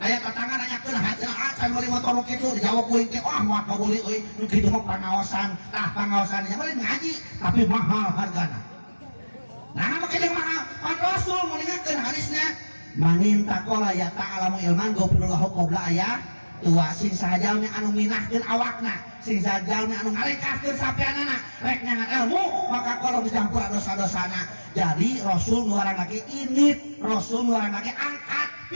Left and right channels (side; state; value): both; inverted; correlation -1.00